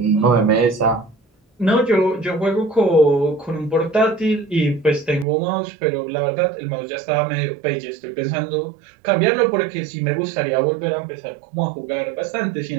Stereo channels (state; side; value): drops out; left; at 5.2 s